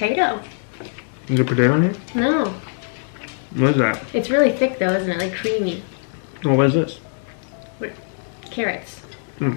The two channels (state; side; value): silent; right; 64 dB below the other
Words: Is there potato in here? No. What is that? It's really thick though, isn't it? Like creamy. Oh, what is this? Carrots.